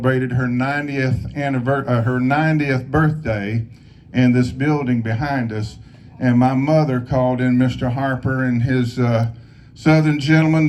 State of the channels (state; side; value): identical; both; correlation 1.00